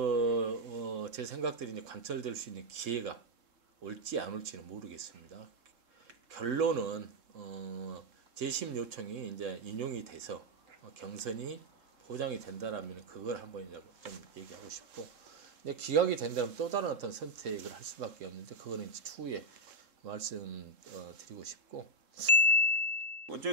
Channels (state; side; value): late; left; 3.7 ms